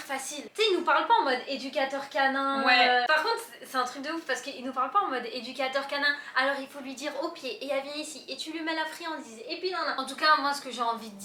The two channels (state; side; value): identical; both; correlation 1.00